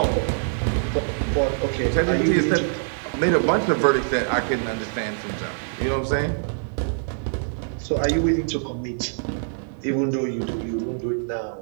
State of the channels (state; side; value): silent; left; digital silence